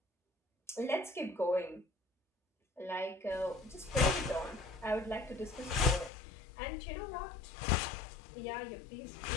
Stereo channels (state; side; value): drops out; right; at 6.1 s